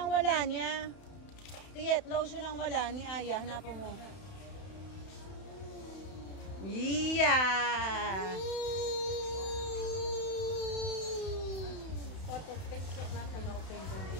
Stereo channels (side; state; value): right; late; 31 ms